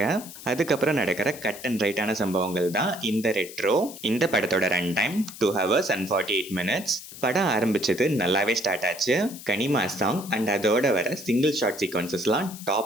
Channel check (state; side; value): noise; left; hiss, 14 dB below the sound